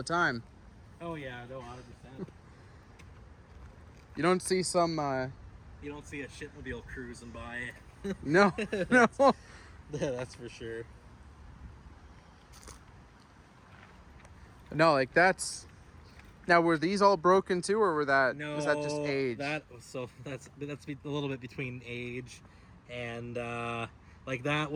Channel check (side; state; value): both; identical; correlation 1.00